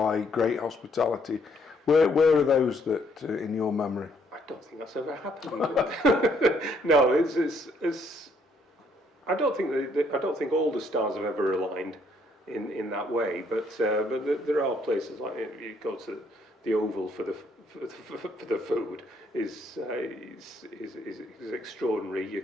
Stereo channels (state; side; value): normal; both; correlation 0.68